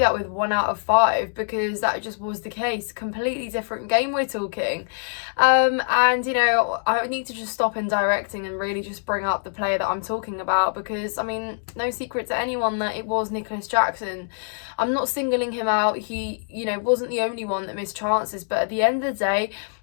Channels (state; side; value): silent; right; digital silence